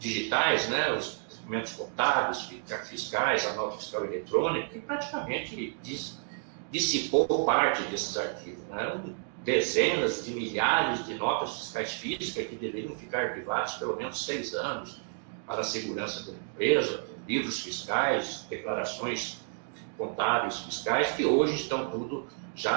né, os documentos contábeis, fiscais, a nota fiscal eletrônica, que praticamente dissipou parte desses arquivos. Né? Eram dezenas de milhares de notas fiscais físicas que deveriam ficar arquivadas pelo menos 6 anos para a segurança da empresa, livros fiscais, declarações contábeis fiscais, que hoje estão tudo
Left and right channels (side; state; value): left; silent; 57 dB below the other